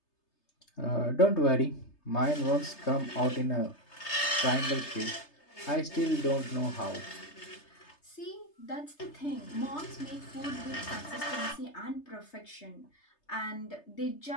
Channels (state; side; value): late; right; 3.3 ms